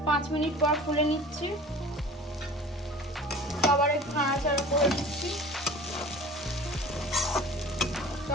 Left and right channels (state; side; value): normal; both; correlation 0.41